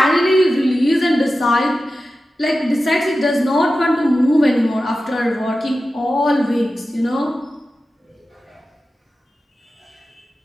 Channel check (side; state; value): both; normal; correlation 0.93